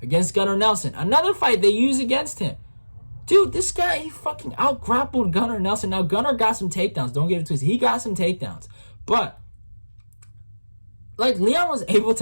against Gunnar Nelson. Another fight they used against him. Dude, this guy, he fucking out-grappled Gunnar Nelson. Now, Gunnar got some takedowns. Don't get it twisted. He got some takedowns. But Leon was able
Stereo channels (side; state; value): both; inverted; correlation -1.00